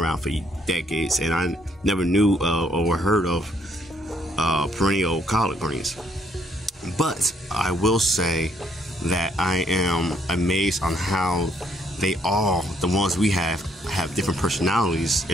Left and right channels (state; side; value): normal; both; correlation 0.70